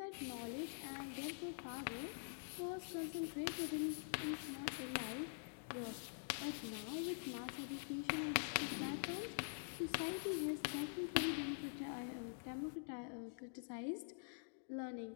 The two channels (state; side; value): silent; right; digital silence